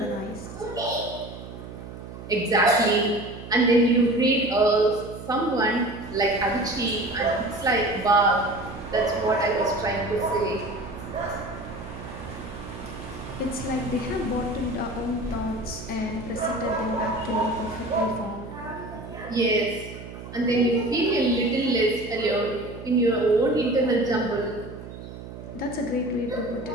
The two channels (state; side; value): noise; right; hum, 12 dB below the sound